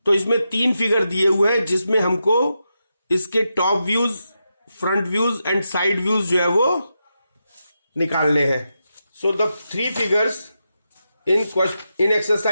तो इसमें 3 figure दिए हुए हैं जिसमें हमको इसके top views, front views and side views जो है वो निकालने हैं. So the 3 figures in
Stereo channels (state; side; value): inverted; both; correlation -0.87